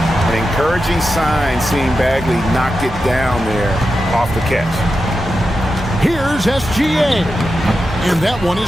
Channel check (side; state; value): both; normal; correlation 0.90